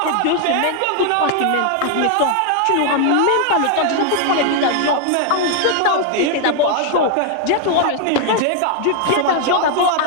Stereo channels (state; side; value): different; both; correlation 0.00